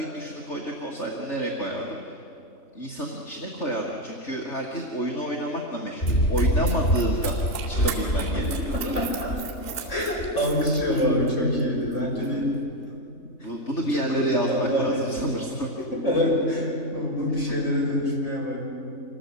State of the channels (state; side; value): late; right; 2.9 ms